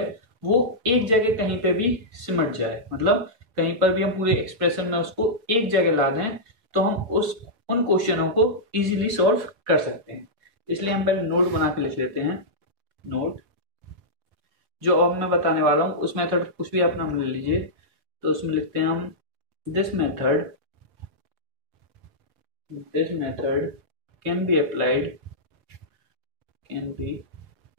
वो एक जगह कहीं पे भी सिमट जाए, मतलब कहीं पर भी हम पूरे एक्सप्रेशन में उसको एक जगह ला दें तो हम उन क्वेश्चनों को इजीली सॉल्व कर सकते हैं। इसलिए हम पहले नोट बना के लिख लेते हैं। नोट जो अब मैं बताने वाला हूं उस मेथड कुछ भी अपना ले लीजिए, तो उसमें लिखते हैं हम this method can be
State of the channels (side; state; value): left; late; 4.5 ms